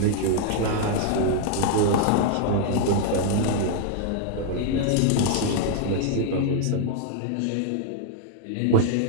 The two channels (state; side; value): different; both; correlation 0.00